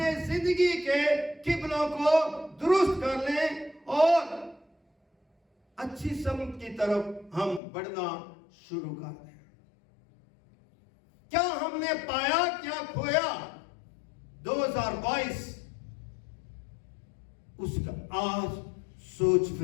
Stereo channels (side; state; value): right; drops out; at 7.6 s